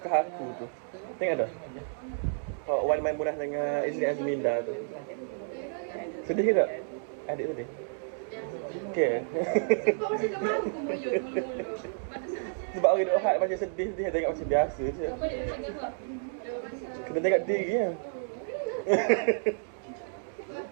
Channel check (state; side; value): silent; left; digital silence